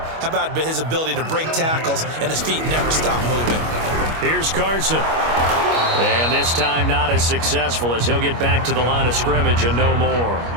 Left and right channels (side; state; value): left; late; 25 ms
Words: How about his ability to break tackles and his feet never stop moving? Here's Carson. And this time not as successful as he'll get back to the line of scrimmage and no more.